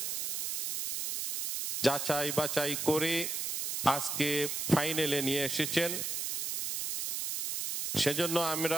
যাচাই বাছাই করে আজকে ফাইনালে নিয়ে এসেছেন। সেজন্য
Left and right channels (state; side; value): noise; right; hiss, 2 dB below the sound